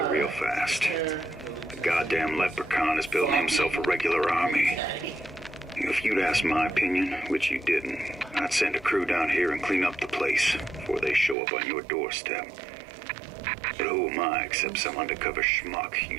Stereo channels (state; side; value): drops out; left; at 11.4 s